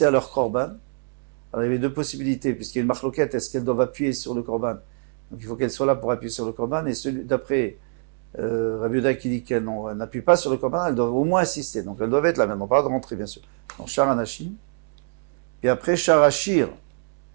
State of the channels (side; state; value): left; silent; digital silence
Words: à leur Korban. Alors, il y avait deux possibilités, puisqu'il y a une marloquette, est-ce qu'elles doivent appuyer sur le Korban? Donc, il faut qu'elles soient là pour appuyer sur le Korban, et celui d'après Rabbi Yehuda qui dit qu'elles n'appuient pas sur le Korban, elles doivent au moins assister. Donc, elles doivent être là maintenant, pas de rentrer, bien sûr. Donc, Shara Nashim. Et après, Shara Shir.